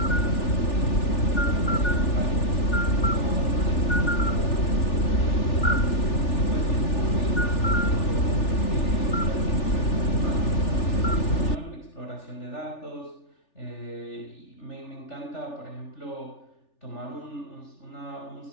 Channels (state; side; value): late; right; 3.4 ms